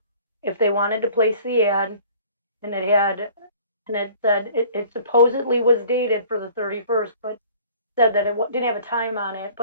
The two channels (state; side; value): inverted; both; correlation -0.50